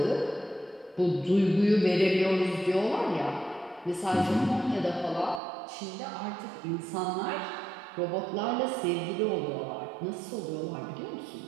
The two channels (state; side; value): drops out; left; at 5.4 s